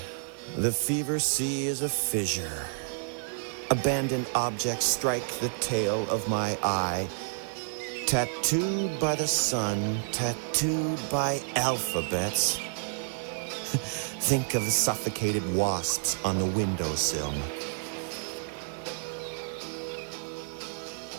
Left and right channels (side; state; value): left; silent; 58 dB below the other